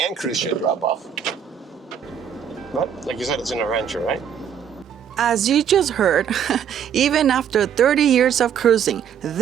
cruise ship drop off? But like you said, it's an adventure, right? As you just heard, even after 30 years of cruising,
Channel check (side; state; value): left; quieter; 8.3 dB